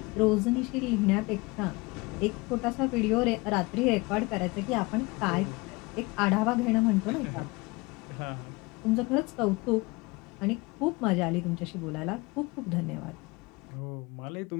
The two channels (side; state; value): right; quieter; 24.8 dB